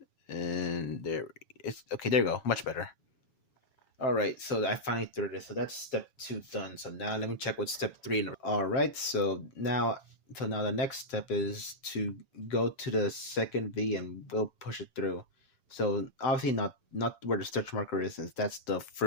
And there it's okay, there you go. Much better. Alright, so I finally threaded it. So that's step 2 done. So now let me check what step 3. Alright, so now the next step is to go to the second V and we'll push it through. So obviously not where the stretch marker is, since that's the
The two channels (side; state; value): right; late; 7.2 ms